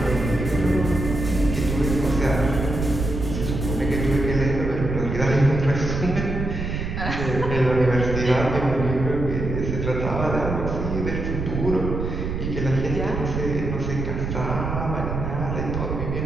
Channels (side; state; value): right; noise; rumble, 3 dB below the sound